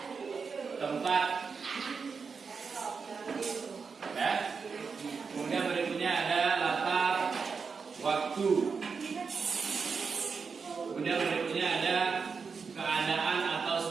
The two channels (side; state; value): left; quieter; 5.3 dB